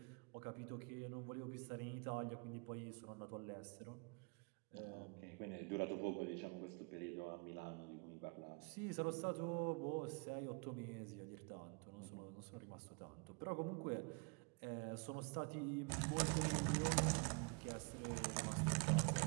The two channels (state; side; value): quieter; left; 31.5 dB